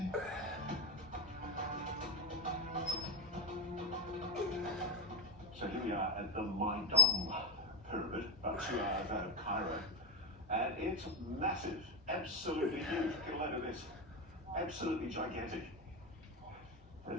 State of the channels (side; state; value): both; normal; correlation 0.13